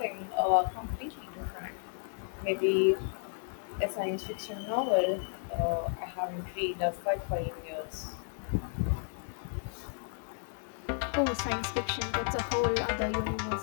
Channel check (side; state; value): right; silent; digital silence